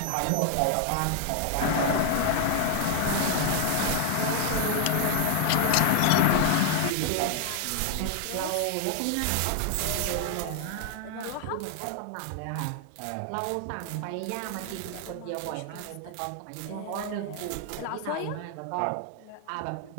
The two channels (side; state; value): both; different; correlation 0.00